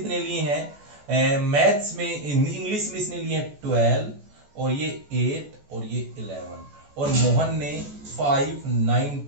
लिए हैं मैथ्स में, इंग्लिश में इसने लिए 12 और ये 8 और ये 11, और मोहन ने 5,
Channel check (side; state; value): left; late; 14 ms